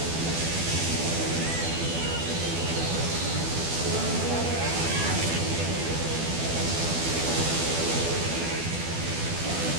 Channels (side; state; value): left; late; 12 ms